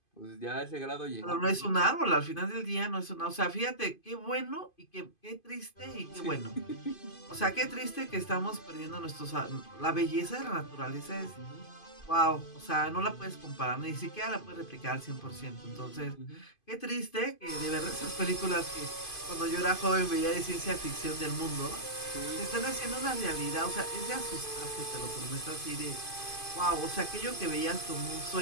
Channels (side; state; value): right; late; 2.5 ms